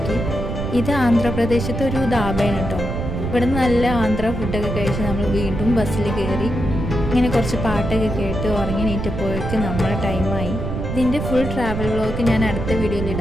ഇത് ആന്ധ്രാപ്രദേശത്തെ ഒരു ധാബയാണ് കേട്ടോ. ഇവിടെ നിന്ന് നല്ല ആന്ധ്ര ഫുഡൊക്കെ കഴിച്ച് നമ്മൾ വീണ്ടും ബസ്സിൽ കയറി. ഇങ്ങനെ കുറച്ച് പാട്ടൊക്കെ കേട്ട് ഉറങ്ങി നീറ്റപ്പോഴേക്ക് നമ്മളെ ടൈമായി. ഇതിൻ്റെ ഫുൾ ട്രാവൽ വ്ളോഗ് ഞാൻ അടുത്ത വീഡിയോയിൽ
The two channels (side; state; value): right; noise; rumble, 4 dB below the sound